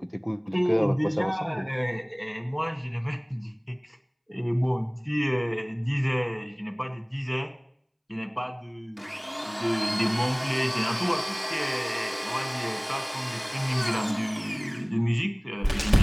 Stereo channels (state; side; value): identical; both; correlation 1.00